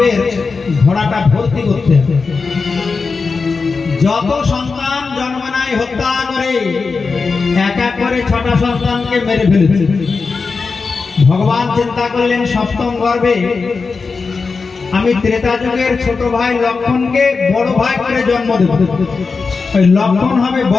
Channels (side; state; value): right; quieter; 4.6 dB